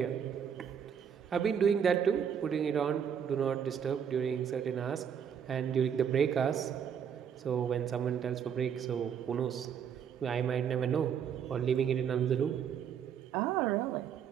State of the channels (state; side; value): quieter; left; 7.9 dB